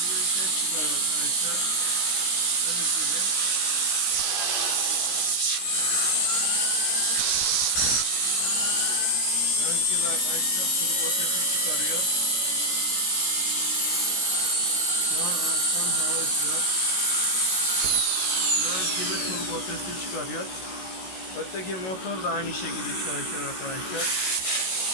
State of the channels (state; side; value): late; right; 16 ms